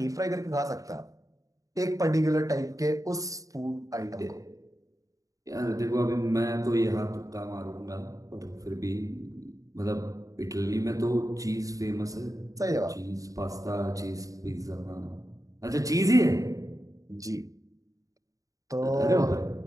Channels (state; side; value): late; left; 0.16 ms